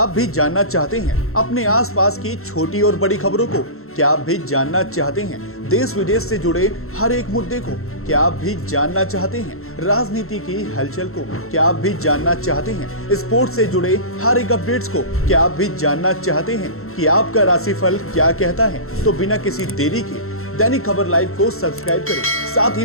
भी जानना चाहते हैं अपने आसपास की छोटी और बड़ी खबरों को? क्या आप भी जानना चाहते हैं देश विदेश से जुड़े हर एक मुद्दे को? क्या आप भी जानना चाहते हैं राजनीति की हलचल को? क्या आप भी जानना चाहते हैं स्पोर्ट्स से जुड़े हर एक अपडेट्स को? क्या आप भी जानना चाहते हैं कि आपका राशिफल क्या कहता है? तो बिना किसी देरी के दैनिक खबर लाइव को सब्सक्राइब करें, साथ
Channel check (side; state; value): right; late; 0.62 ms